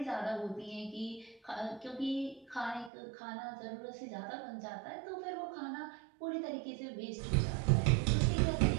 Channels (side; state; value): left; drops out; at 2.9 s